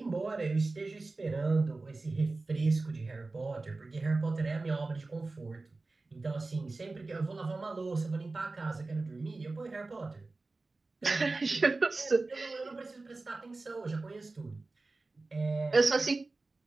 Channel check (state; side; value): quieter; left; 3.5 dB